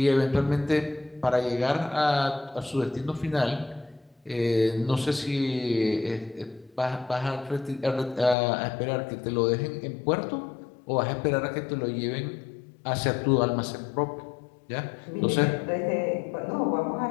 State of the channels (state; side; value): drops out; right; at 8.3 s